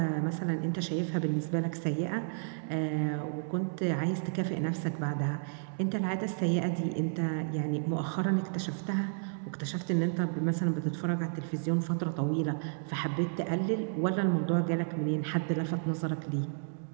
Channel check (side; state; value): left; silent; digital silence